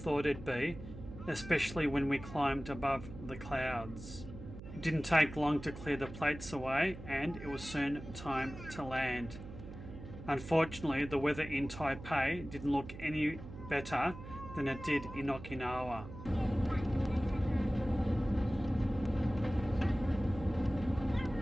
it'd be, especially when we climbed above the clouds. It didn't take long to clear the plates away, and it was soon time to land. Unfortunately, the weather in Taipei didn't look any better than it did in Okinawa.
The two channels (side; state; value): right; noise; hum, 12 dB below the sound